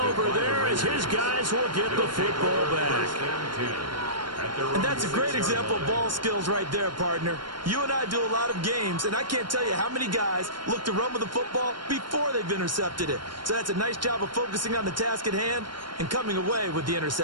there as his guys will get the football back. And that's a great example of ball skills right there, partner. You and I do a lot of games, and I can't tell you how many guys look to run with the football before they've intercepted it. So that's a nice job of focusing on the task at hand and coming away with the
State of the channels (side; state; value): left; late; 0.72 ms